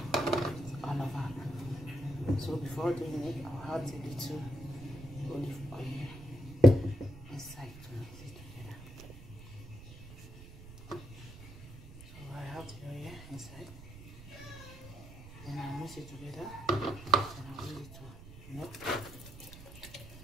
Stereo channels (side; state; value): right; noise; rumble, 15 dB below the sound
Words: all over. So before doing it, I'll add a little olive oil inside to mix it together. So I have the oil inside. Then I'll mix it together and I'll use it to melt.